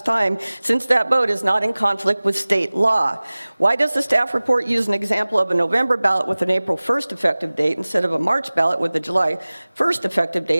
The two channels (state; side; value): inverted; both; correlation -1.00